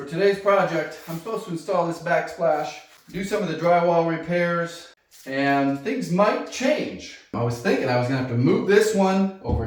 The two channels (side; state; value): both; identical; correlation 1.00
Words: today's project, I'm supposed to install this backsplash, do some of the drywall repairs, and things might change. I was thinking I was going to have to move this one over